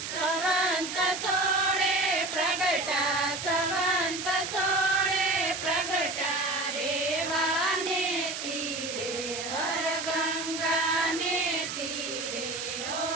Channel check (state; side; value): noise; right; hiss, 5 dB below the sound